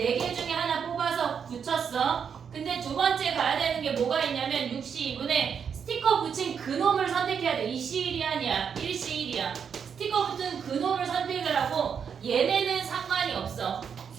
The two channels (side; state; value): left; quieter; 7.1 dB